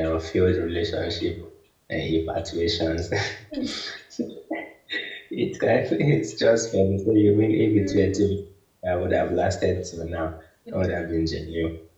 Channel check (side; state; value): both; identical; correlation 1.00